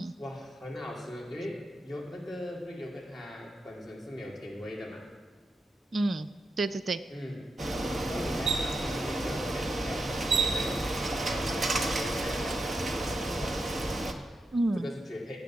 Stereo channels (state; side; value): normal; both; correlation 0.86